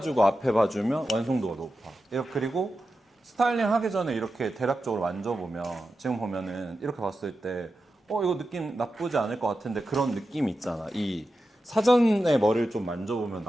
앞에 봐주면 완성도가 높아. 그리고 스타일링 하기 전에 이렇게 대략적으로 만져보면 지금 보면은 이렇게 봤을 때 이거 느낌 나쁘지 않을 것 같은데 그런 느낌이 있잖아. 이 사전에 머리를 좀 만져보면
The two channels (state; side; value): normal; both; correlation 0.91